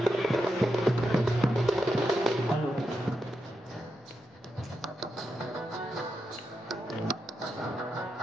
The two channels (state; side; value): normal; both; correlation 0.86